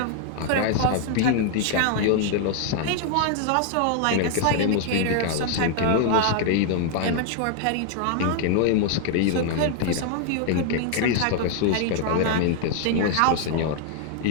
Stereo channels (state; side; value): different; both; correlation 0.00